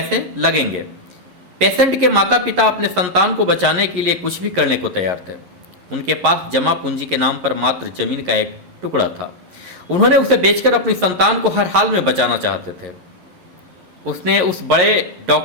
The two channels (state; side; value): late; left; 11 ms